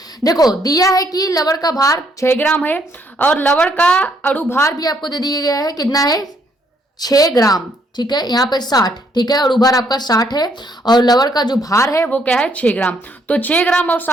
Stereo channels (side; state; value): both; normal; correlation 0.70